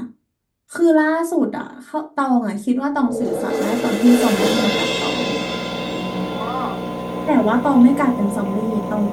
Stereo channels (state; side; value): identical; both; correlation 1.00